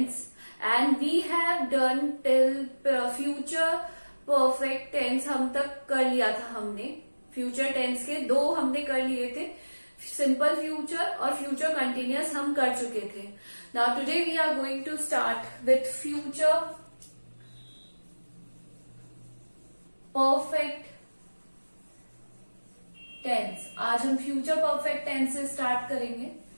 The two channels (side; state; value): both; inverted; correlation -1.00